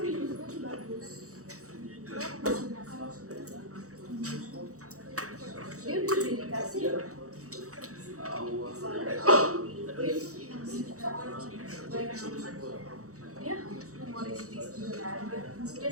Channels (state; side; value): late; left; 0.65 ms